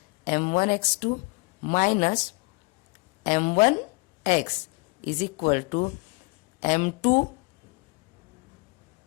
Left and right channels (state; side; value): quieter; right; 27.9 dB